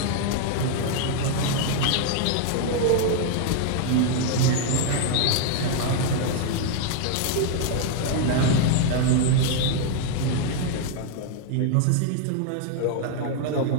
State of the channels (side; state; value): both; different; correlation 0.00